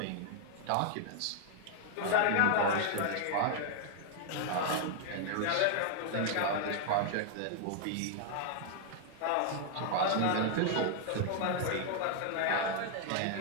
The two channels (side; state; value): both; different; correlation 0.00